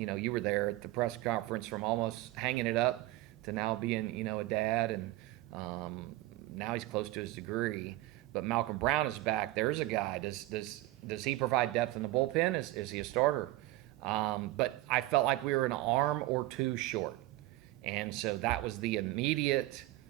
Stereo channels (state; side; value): quieter; left; 17.6 dB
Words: were there at the press conference, from almost hanging it up to now being a dad, and now he's close to his degree. But Malcolm Brown is back. There's a guy. Does he provide depth in the bullpen? Is he a starter? But I felt like we were an arm or 2 short. And so that was the immediate